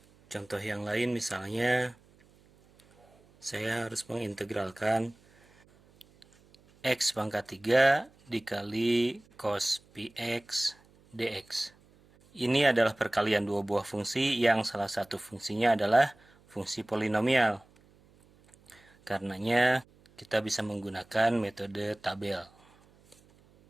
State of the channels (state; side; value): noise; right; hum, 29 dB below the sound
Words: Contoh yang lain misalnya, saya harus mengintegralkan X pangkat 3 dikali cos px dx. Ini adalah perkalian dua buah fungsi yang salah satu fungsinya adalah fungsi polinomial. Karenanya kita bisa menggunakan metode tabel.